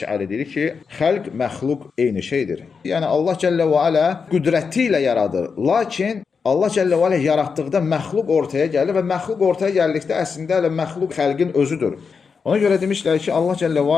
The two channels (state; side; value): quieter; right; 5.5 dB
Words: deyir ki, xəlq, məxluq eyni şeydir. Yəni, Allah Cəllə və Alə qüdrəti ilə yaradır. Lakin Allah Cəllə və Alə yaratdıqda məxluq ortaya gəlir və məxluq ortaya gəldikdə əslində elə məxluq xəlqin özüdür. Ona görə demişlər ki, Allah Cəllə və